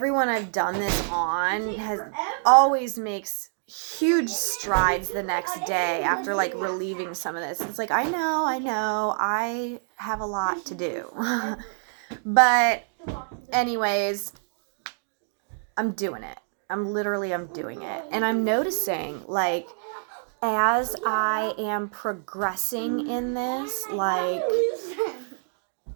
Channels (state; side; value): silent; left; digital silence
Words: I've done this on has always makes huge strides the next day after like relieving some of this. It's like I know I have a lot to do. But anyways, I'm doing it. I'm doing it. And I'm noticing like as I am progressing in this, like